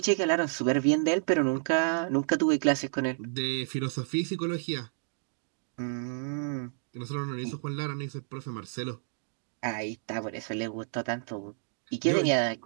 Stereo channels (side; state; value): left; silent; digital silence